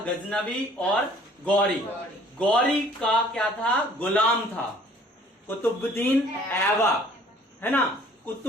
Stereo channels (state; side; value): normal; both; correlation 0.55